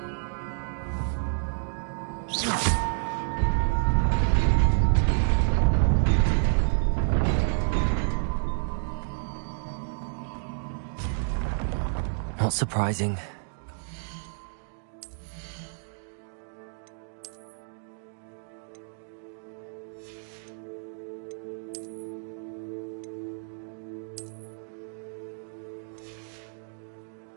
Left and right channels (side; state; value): left; silent; digital silence